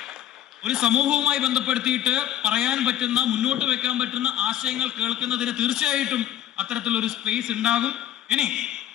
ഒരു സമൂഹവുമായി ബന്ധപ്പെടുത്തിയിട്ട് പറയാൻ പറ്റുന്ന, മുന്നോട്ട് വെക്കാൻ പറ്റുന്ന ആശയങ്ങൾ കേൾക്കുന്നതിന് തീർച്ചയായിട്ടും അത്തരത്തിലൊരു സ്പേസ് ഉണ്ടാകും. ഇനി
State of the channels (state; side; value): quieter; right; 11.6 dB